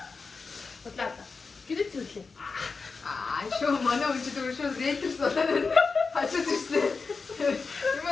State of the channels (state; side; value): quieter; right; 4.6 dB